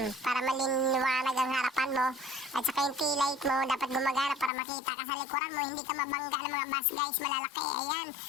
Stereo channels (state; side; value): drops out; right; at 4.5 s